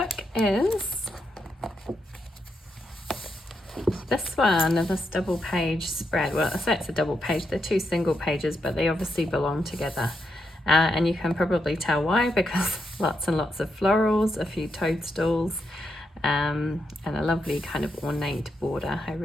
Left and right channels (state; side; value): normal; both; correlation 0.82